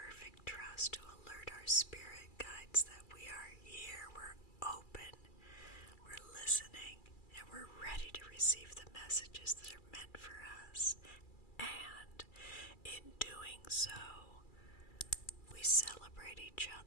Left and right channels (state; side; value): late; right; 2.3 ms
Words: trust, to alert our spirit guides that we are here. We're open, we're listening, and we're ready to receive the messages that are meant for us. And in doing so, we celebrate each